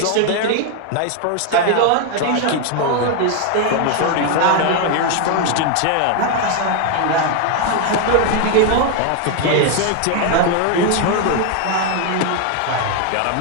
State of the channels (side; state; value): both; different; correlation 0.01